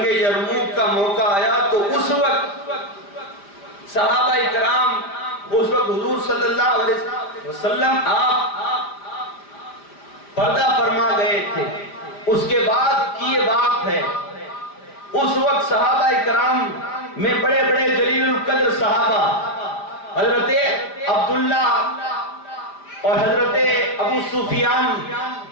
یرموک کا موقع آیا تو اس وقت صحابہ کرام، اس وقت حضور صلی اللہ علیہ وسلم آپ پردہ فرما گئے تھے۔ اس کے بعد کی یہ بات ہے، اس وقت صحابہ کرام میں بڑے بڑے جلیل القدر صحابہ حضرت عبداللہ اور حضرت ابو سفیان،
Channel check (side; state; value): right; late; 5.0 ms